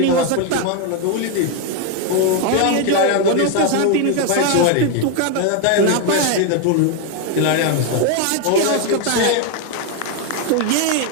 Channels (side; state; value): both; different; correlation 0.01